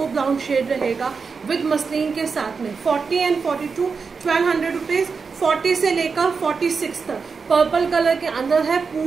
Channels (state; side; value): quieter; left; 5.2 dB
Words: brown shade रहेगा विद मसलिन के साथ में। 40 and 42, 1200 रुपीज़। 40 से लेकर 46 तक पर्पल कलर के अंदर है।